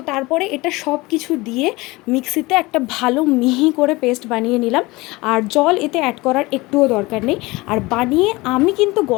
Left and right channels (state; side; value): quieter; right; 22.1 dB